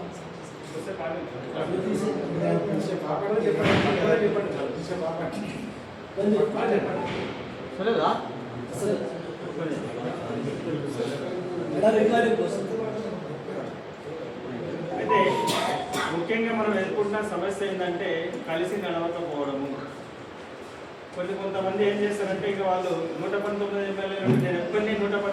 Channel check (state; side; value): identical; both; correlation 1.00